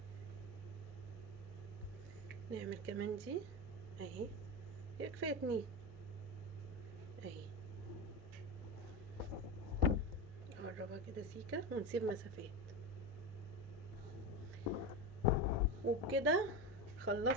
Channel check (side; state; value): both; normal; correlation 0.20